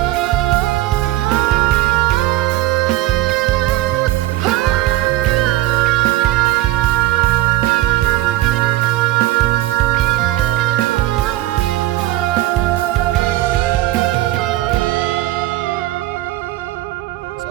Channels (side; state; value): left; quieter; 15.9 dB